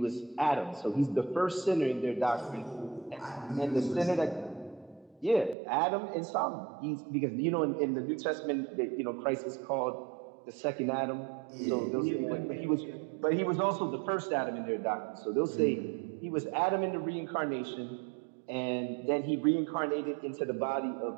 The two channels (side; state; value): left; drops out; at 5.6 s